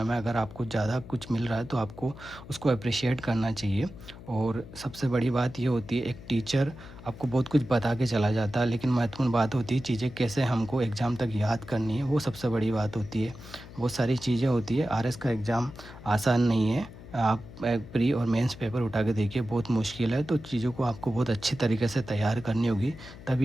में अगर आपको ज़्यादा कुछ मिल रहा है तो आपको उसको अप्रिशिएट करना चाहिए। और सबसे बड़ी बात ये होती है, एक टीचर आपको बहुत कुछ बता के चला जाता है, लेकिन महत्वपूर्ण बात होती है चीज़ें कैसे हमको एग्ज़ाम तक याद करनी है, वो सबसे बड़ी बात होती है। बहुत सारी चीज़ें होती है। आरएस का एग्ज़ाम आसान नहीं है। आप एक प्री और मेंस पेपर उठा के देखिए, बहुत मुश्किल है। तो चीज़ों को आपको बहुत अच्छी तरीके से तैयार करनी होगी,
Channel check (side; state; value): left; noise; hum, 16 dB below the sound